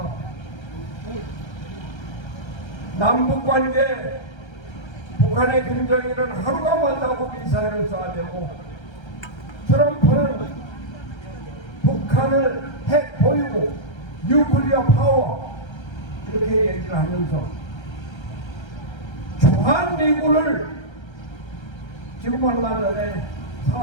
남북관계, 북한의 김정일은 하루가 멀다고 미사일을 쏴대고 트럼프는 북한을 핵 보유고 뉴클리어 파워 이렇게 얘기를 하면서 주한미군을 지금 얼마 전에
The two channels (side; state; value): right; late; 1.3 ms